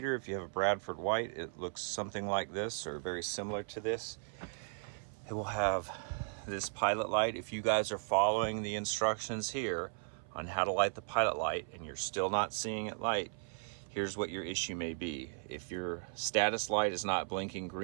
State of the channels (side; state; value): left; silent; 53 dB below the other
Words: If you have a Bradford White, it looks something like this or very similar to this. It will have this pilot light. If you guys are following the instructions here on how to light the pilot light and you're still not seeing it light, here's what your issue may be. If your status light is not blinking